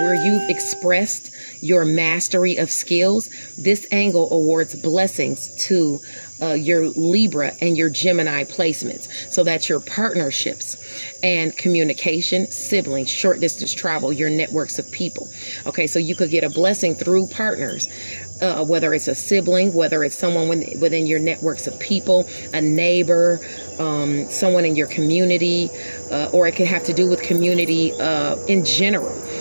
you've expressed your mastery of skills, this angle awards blessings to your Libra and your Gemini placements. So that's your partnerships and communication, siblings, short distance travel, your networks of people. Okay, so you could get a blessing through partners. Whether it's a sibling, whether it's someone within your networks of people, a neighbor, someone in your community, or it could have to do with community in general.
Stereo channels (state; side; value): inverted; both; correlation -1.00